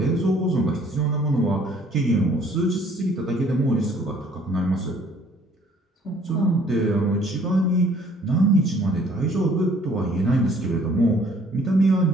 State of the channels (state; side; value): normal; both; correlation 0.58